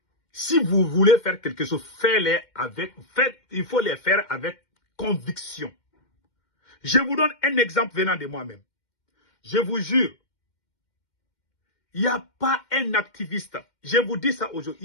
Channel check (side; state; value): right; late; 2.1 ms